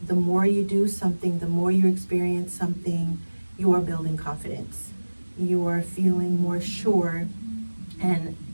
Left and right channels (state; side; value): inverted; both; correlation -1.00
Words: the more you do something, the more you experience something, you are building confidence. You are feeling more sure. And